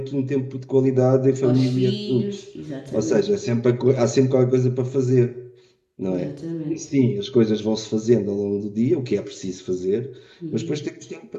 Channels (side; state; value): both; identical; correlation 1.00